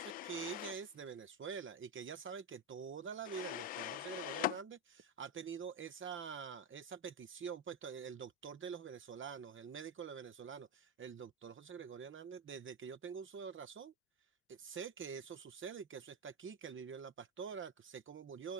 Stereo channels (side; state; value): both; normal; correlation 0.09